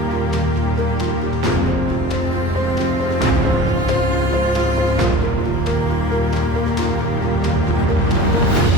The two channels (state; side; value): normal; both; correlation 0.40